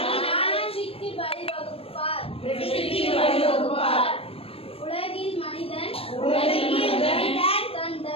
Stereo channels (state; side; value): late; right; 0.28 ms